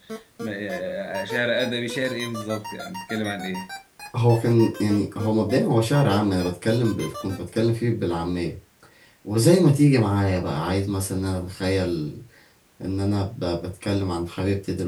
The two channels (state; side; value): identical; both; correlation 1.00